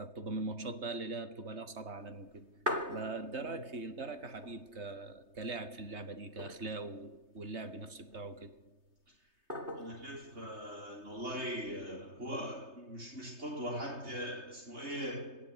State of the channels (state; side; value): late; left; 3.2 ms